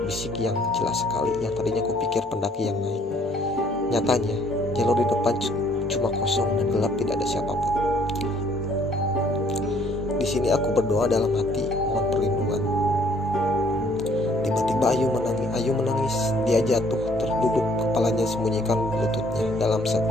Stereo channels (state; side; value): normal; both; correlation 0.62